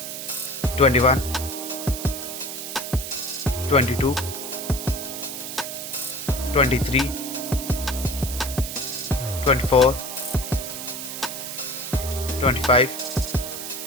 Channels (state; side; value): noise; right; hiss, 7 dB below the sound